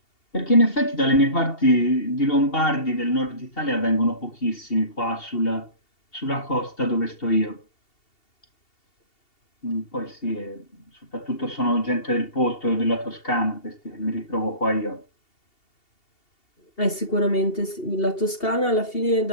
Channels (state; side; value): late; right; 2.7 ms